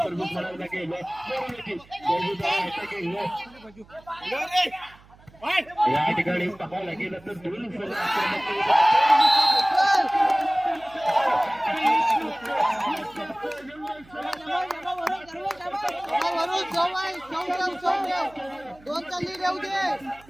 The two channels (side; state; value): right; noise; hum, 26 dB below the sound